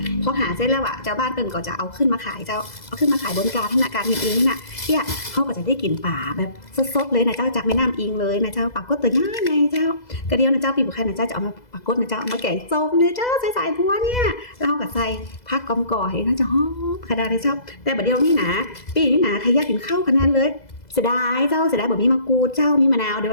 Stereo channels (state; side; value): late; right; 2.0 ms